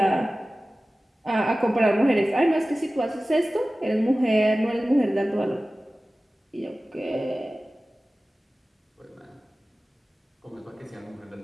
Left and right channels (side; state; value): both; normal; correlation 0.96